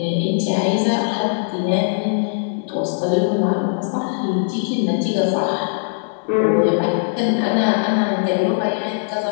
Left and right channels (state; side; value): silent; right; digital silence